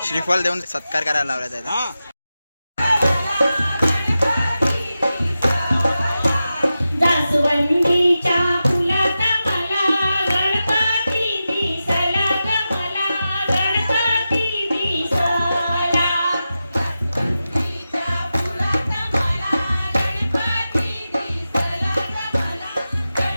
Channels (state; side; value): inverted; both; correlation -0.92